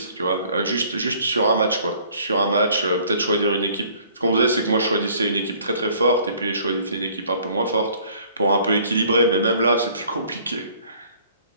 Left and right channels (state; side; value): inverted; both; correlation -0.56